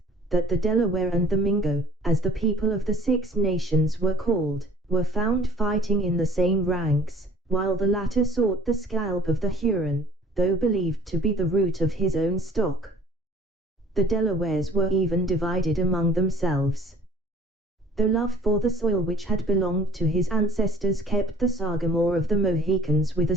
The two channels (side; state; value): both; normal; correlation 0.52